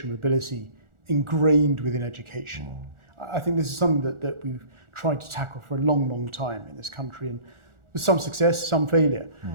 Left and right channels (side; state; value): left; late; 1.4 ms